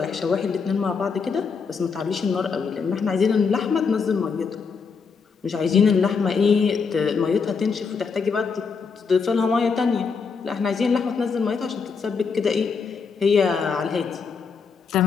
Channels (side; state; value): right; quieter; 5.4 dB